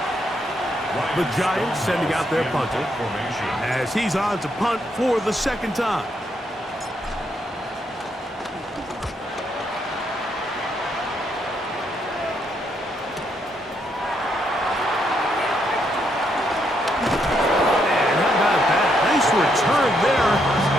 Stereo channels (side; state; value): both; normal; correlation 0.76